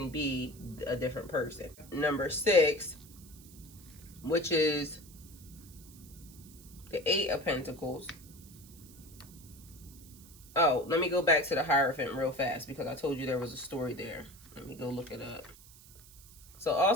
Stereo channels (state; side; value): noise; right; hiss, 21 dB below the sound